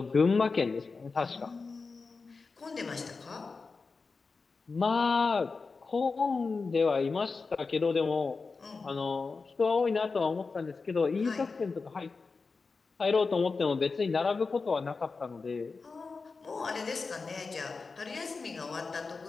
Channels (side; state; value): right; quieter; 4.4 dB